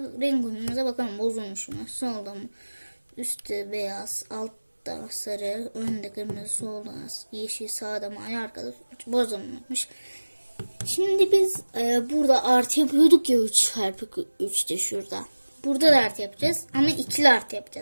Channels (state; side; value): inverted; both; correlation -1.00